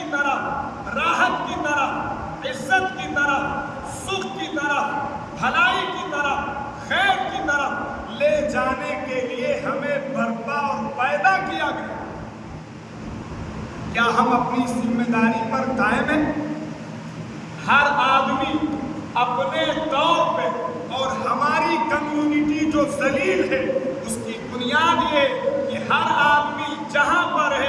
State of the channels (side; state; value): both; identical; correlation 1.00